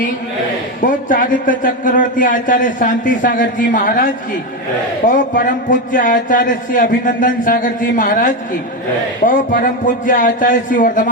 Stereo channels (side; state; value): both; normal; correlation 0.12